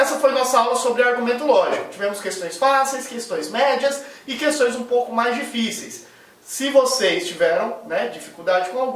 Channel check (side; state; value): both; identical; correlation 1.00